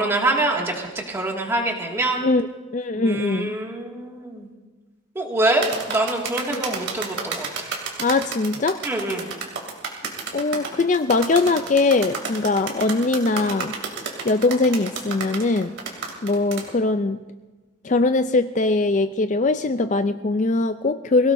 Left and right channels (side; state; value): both; normal; correlation 0.34